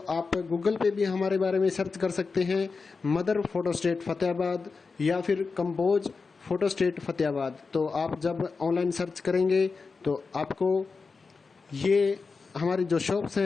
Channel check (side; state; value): right; quieter; 4.6 dB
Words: आप गूगल पे भी हमारे बारे में सर्च कर सकते हैं, मदर फोटोस्टेट फतेहाबाद या फिर कंपोज फोटोस्टेट फतेहाबाद। तो आप जब ऑनलाइन सर्च करेंगे तो आपको ये हमारी जो शॉप्स